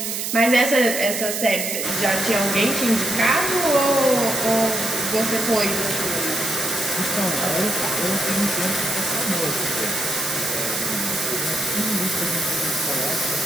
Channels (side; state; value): right; noise; hiss, 2 dB below the sound